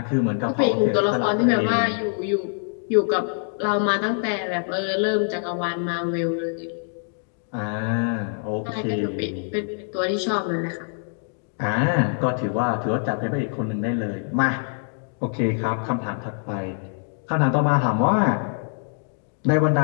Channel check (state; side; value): silent; right; 62 dB below the other